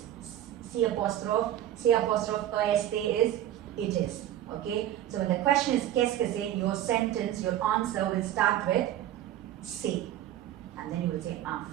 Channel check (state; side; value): quieter; left; 12.1 dB